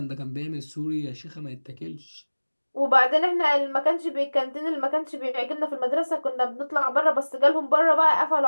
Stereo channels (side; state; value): both; inverted; correlation -1.00